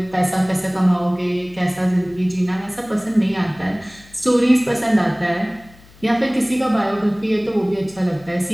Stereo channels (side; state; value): left; noise; hum, 25 dB below the sound